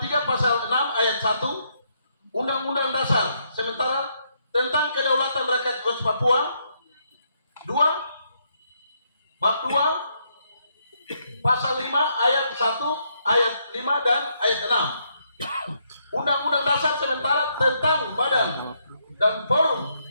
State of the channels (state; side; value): inverted; both; correlation -0.75